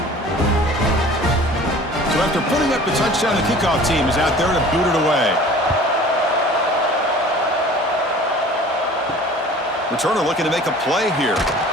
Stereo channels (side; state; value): both; normal; correlation 0.46